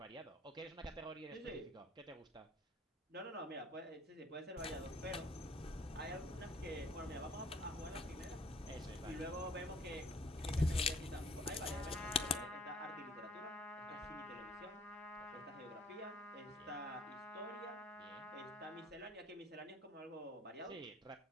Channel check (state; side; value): normal; both; correlation 0.57